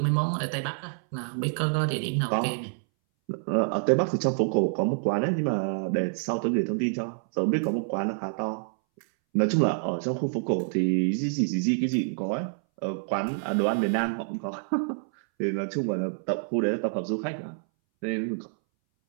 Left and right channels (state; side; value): silent; left; 60 dB below the other